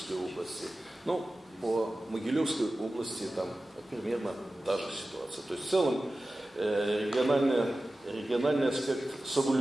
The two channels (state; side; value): normal; both; correlation 0.95